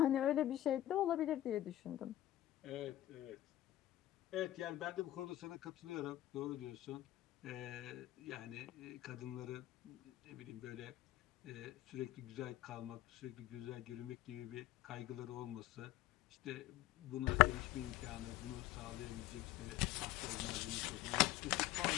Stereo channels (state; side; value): quieter; right; 14.9 dB